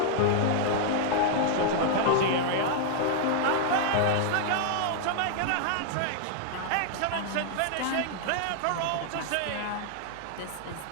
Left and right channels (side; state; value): both; different; correlation -0.01